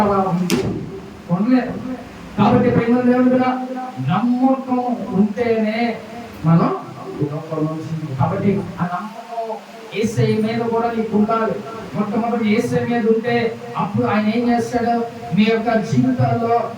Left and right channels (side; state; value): both; identical; correlation 1.00